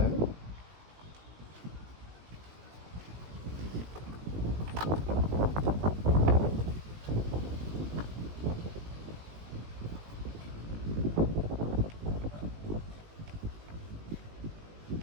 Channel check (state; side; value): late; left; 18 ms